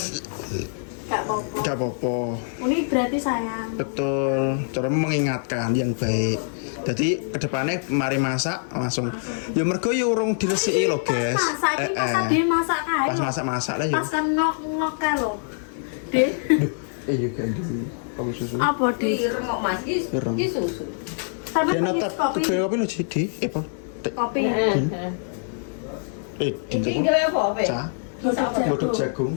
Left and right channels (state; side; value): silent; right; 62 dB below the other